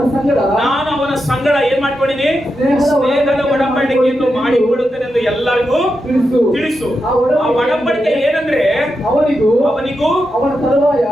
ಅವನ ಸಂಗಡ ಏನ್ ಮಾಡ್ಕೊಂಡಿನಿ? ಸ್ನೇಹದ ಒಡಂಬಡಿಕೆಯನ್ನು ಮಾಡಿ ಬಿಡುತ್ತೇನೆ ಎಂದು ಎಲ್ಲರಿಗೂ ತಿಳಿಸು. ಆ ಒಡಂಬಡಿಕೆ ಏನಂದ್ರೆ ಅವನಿಗೂ ಅವನ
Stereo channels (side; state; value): both; normal; correlation 0.87